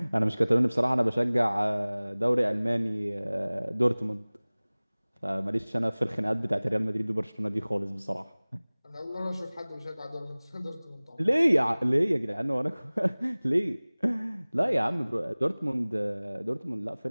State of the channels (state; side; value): inverted; both; correlation -1.00